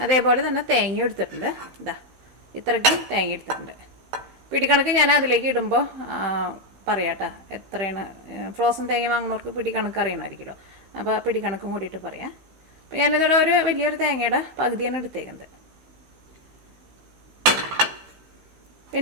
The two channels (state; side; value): late; left; 15 ms